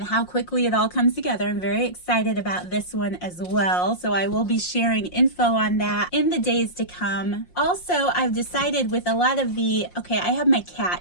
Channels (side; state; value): right; late; 5.6 ms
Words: how quickly it all comes together. I'm very excited about this one as well, so I will be sharing info on that in the days to come. Also, I've decided with a lot of the, I have my